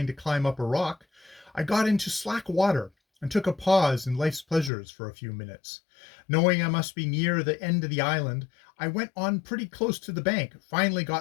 to climb up a rock, I got into slack water, and took a pause in life's pleasures for a few minutes. Knowing I must be near the end of the island, I went on pretty close to the bank, finally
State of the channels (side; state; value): right; drops out; at 4.7 s